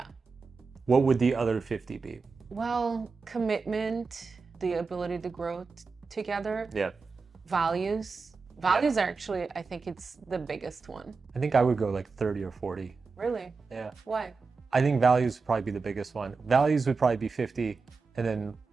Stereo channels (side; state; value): left; quieter; 4.5 dB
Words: What would the other 50 be? Well, commitment, the ability to grow together, Yeah. values. Values are actually, I think it's the biggest one. I think I would go like 30 or 40. Really? Yeah. Why? I think values would probably be the biggest one. Values would probably be 50, and then